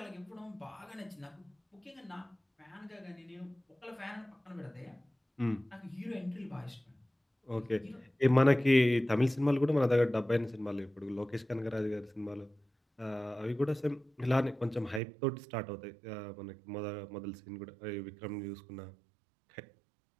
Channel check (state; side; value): drops out; left; at 15.0 s